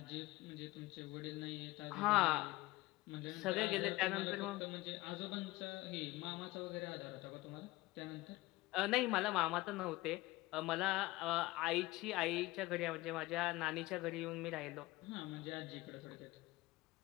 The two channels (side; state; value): right; quieter; 19.6 dB